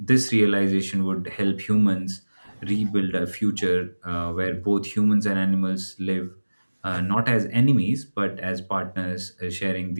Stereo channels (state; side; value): inverted; both; correlation -1.00